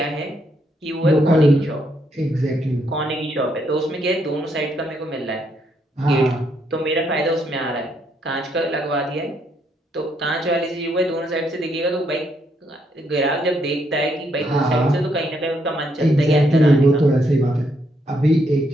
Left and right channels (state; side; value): normal; both; correlation 0.74